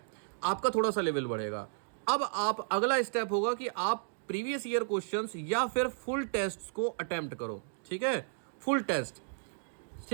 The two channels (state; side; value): silent; left; digital silence